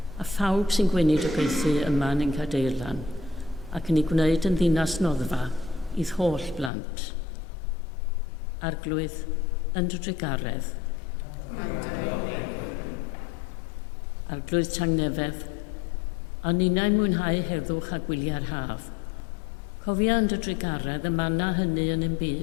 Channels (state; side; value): drops out; right; at 6.7 s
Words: a phawb sy'n gwneud y gweithu yma yn ein cadeirlan, ac yn ei gwneud yn ddinas noddfa i'r holl blant. Arglwydd, yn dy drigaredd. Arglwydd Tangnefedd, a ninnau'n mwynhau heddwch a gwyliau'r haf. Cofia yn dy drigaredd y manna hynny yn ein